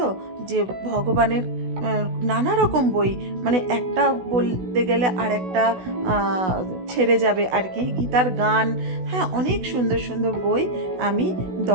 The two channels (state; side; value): late; left; 16 ms